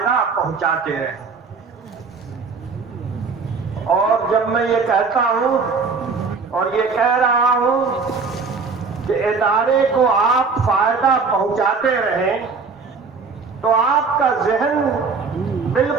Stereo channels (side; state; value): left; quieter; 4.7 dB